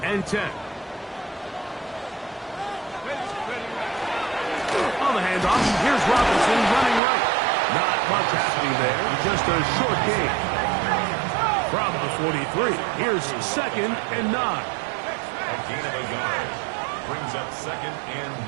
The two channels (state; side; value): drops out; left; at 7.0 s